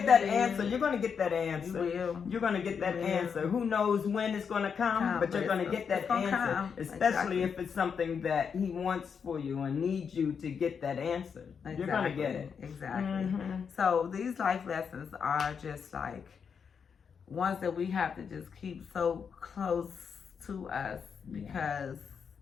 that answer. You're going to get that answer. You will. You're going to get that answer. Who knows when it's going to come, but you're going to get that answer. Especially if it's something that he wants for you and needs you to get that answer. You're going to get it. Exactly. So these life lessons are just like ones that we have to just keep so close to us, because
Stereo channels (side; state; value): right; quieter; 6.5 dB